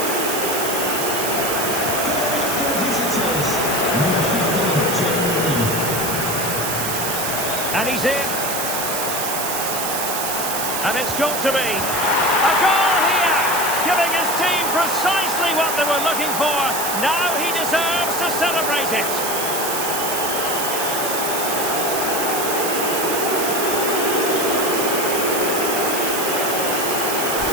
And he's in. And it's got to be a goal here, giving his team precisely what they were looking for. Now he deserves to celebrate it.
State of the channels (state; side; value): noise; right; hiss, 2 dB below the sound